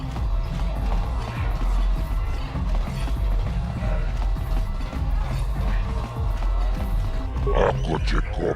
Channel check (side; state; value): both; identical; correlation 1.00